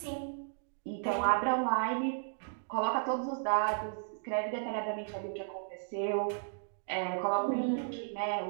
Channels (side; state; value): left; silent; digital silence